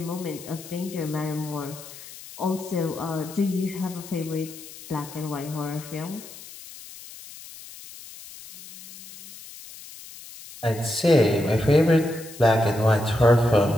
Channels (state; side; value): noise; left; hiss, 16 dB below the sound